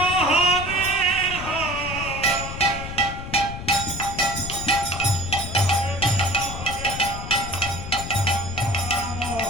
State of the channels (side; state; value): left; noise; rumble, 9 dB below the sound